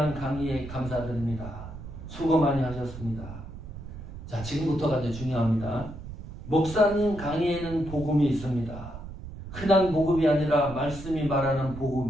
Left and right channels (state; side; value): noise; right; rumble, 12 dB below the sound